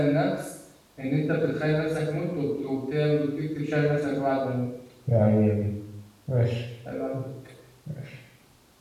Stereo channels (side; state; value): both; identical; correlation 1.00